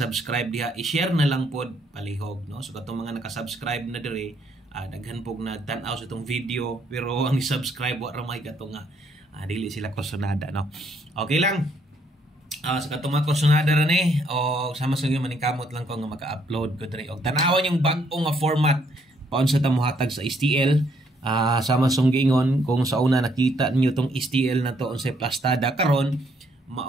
diha i-share na lang pod palihog no so katong mga naka-subscribe na diri daghan pog nagtan-aw sa itong video pero ang subscribe wa ra may katong dili sila kusonada no okay lang sa katong mga kusonada ra ni o sama sa gyud maningkamot lang ko nga maka-upload ko diri og tanawan yung bag-o nga format paunsa ta mohatag sa STL sama song gingon kung sa una nakita ninyo tong STL na to unsay plastada karon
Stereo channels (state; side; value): normal; both; correlation 0.70